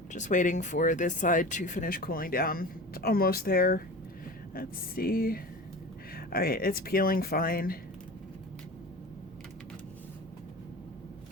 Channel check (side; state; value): both; normal; correlation 0.34